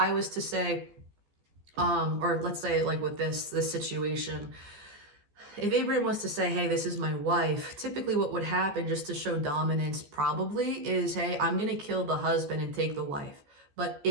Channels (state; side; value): late; left; 14 ms